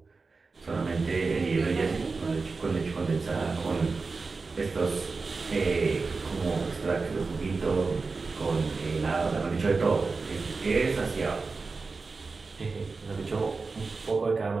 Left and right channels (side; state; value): left; quieter; 4.2 dB